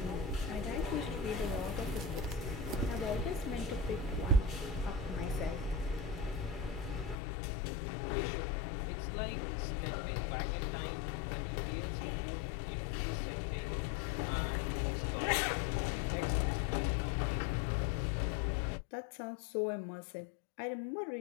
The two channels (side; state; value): right; drops out; at 7.2 s